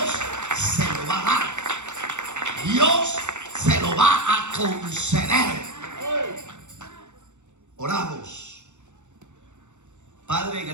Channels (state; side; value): late; left; 0.84 ms